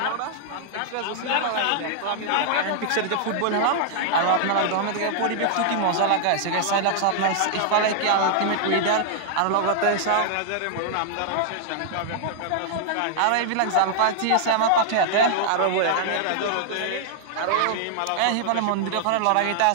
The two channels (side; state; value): both; different; correlation -0.01